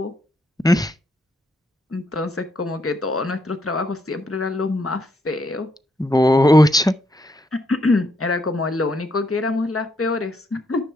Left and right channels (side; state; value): both; normal; correlation 0.76